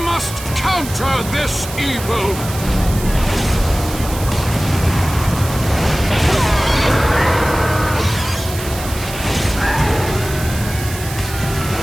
counter this evil!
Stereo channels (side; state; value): right; noise; hiss, 11 dB below the sound